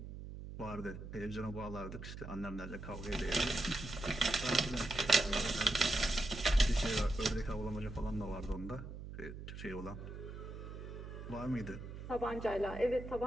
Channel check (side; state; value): right; noise; hum, 10 dB below the sound